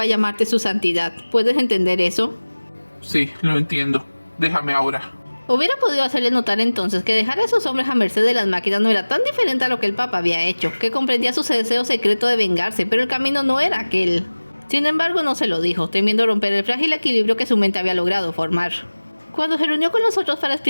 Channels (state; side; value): inverted; both; correlation -1.00